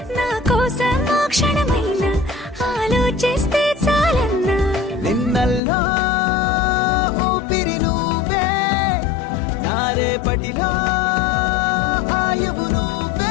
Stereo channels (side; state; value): right; drops out; at 5.6 s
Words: నా కోసం ఆ క్షణమైన ఆలోచిస్తే చాలన్నా నిన్నల్లో ఊపిరి నువ్వే నా రేపటిలో ఆయువు